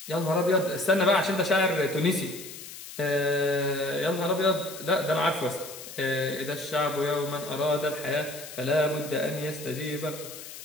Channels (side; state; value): left; noise; hiss, 13 dB below the sound